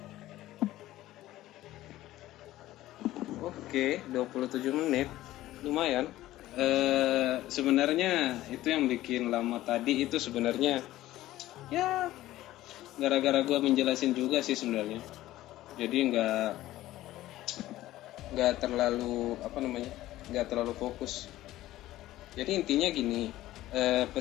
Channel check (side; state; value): right; quieter; 15.4 dB